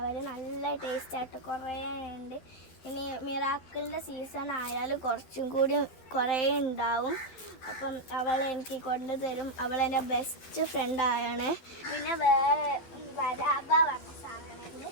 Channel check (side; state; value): right; late; 12 ms